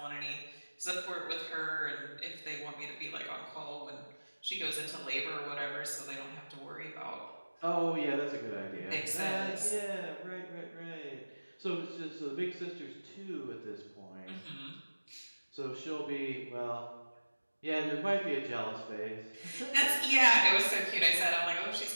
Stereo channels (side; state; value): both; inverted; correlation -1.00